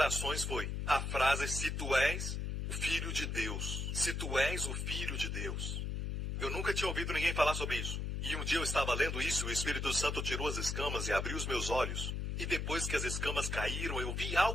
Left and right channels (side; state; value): left; noise; hum, 2 dB below the sound